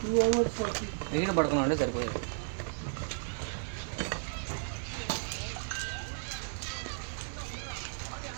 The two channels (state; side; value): silent; left; digital silence